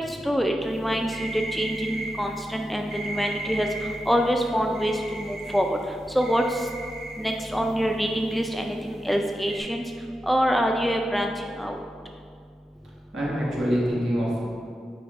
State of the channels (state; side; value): normal; both; correlation 0.89